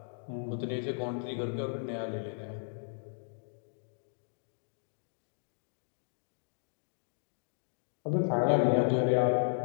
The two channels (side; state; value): right; silent; digital silence